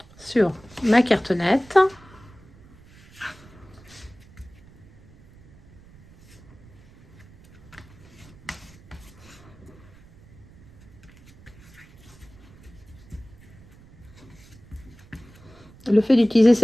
sur ma cartonnette. Le fait d'utiliser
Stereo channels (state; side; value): noise; right; rumble, 24 dB below the sound